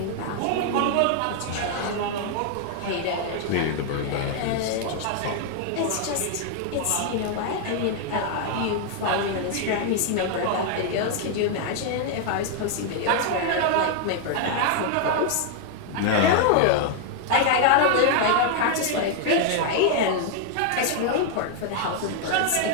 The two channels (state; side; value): different; both; correlation 0.00